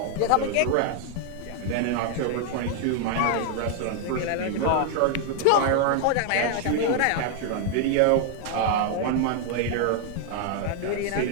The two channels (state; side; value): different; both; correlation 0.00